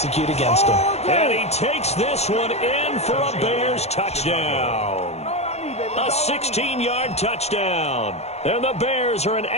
against them. And he takes this one in for a Bears touchdown. A 16-yard touchdown. And the Bears are an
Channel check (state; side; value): late; right; 0.31 ms